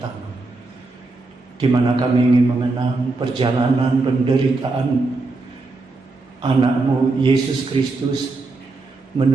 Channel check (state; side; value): quieter; left; 3.5 dB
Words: di mana kami ingin mengenang perjalanan penderitaan anak-Mu Yesus Kristus